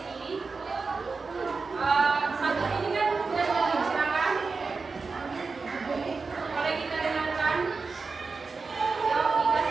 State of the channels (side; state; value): left; quieter; 4.4 dB